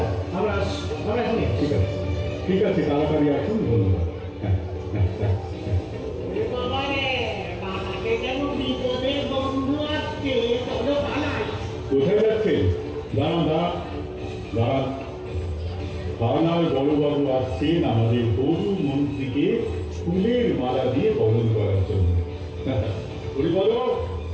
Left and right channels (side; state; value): both; identical; correlation 1.00